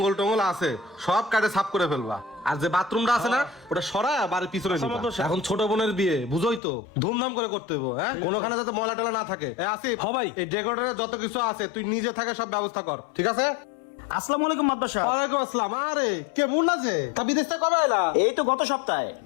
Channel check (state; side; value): drops out; right; at 6.6 s